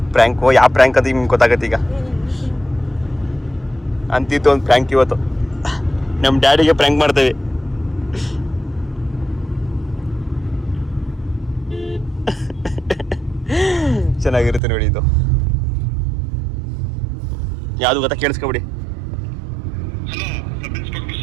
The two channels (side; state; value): left; drops out; at 14.6 s